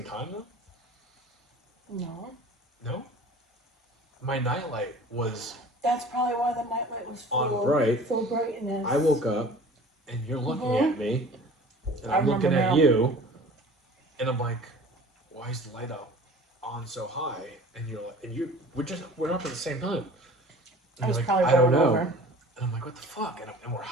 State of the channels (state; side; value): normal; both; correlation 0.44